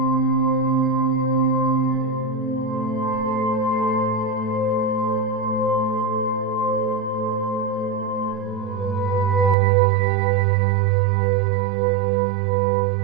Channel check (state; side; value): drops out; left; at 9.6 s